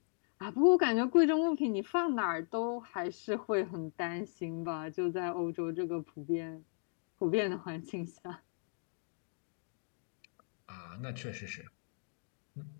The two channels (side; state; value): right; silent; 53 dB below the other